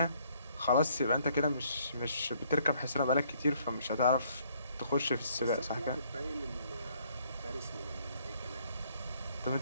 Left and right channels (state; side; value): inverted; both; correlation -0.65